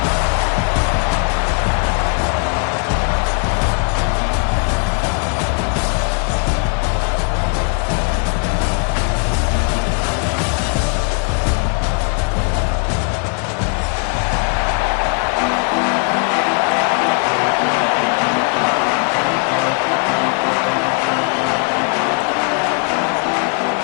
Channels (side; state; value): right; quieter; 39.4 dB